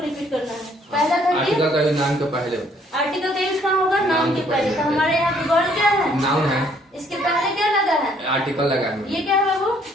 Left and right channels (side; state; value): both; normal; correlation 0.64